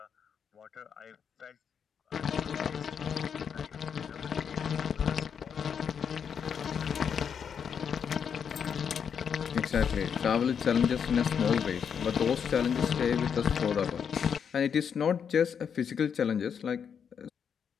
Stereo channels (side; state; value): right; quieter; 7.3 dB